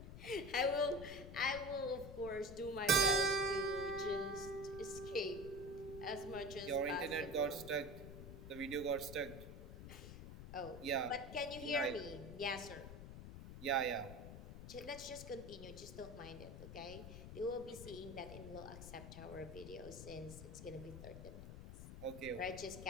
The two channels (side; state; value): left; noise; rumble, 11 dB below the sound